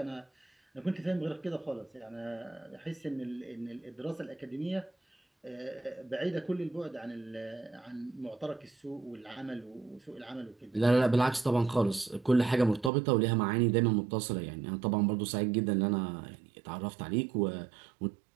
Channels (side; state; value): left; drops out; at 12.9 s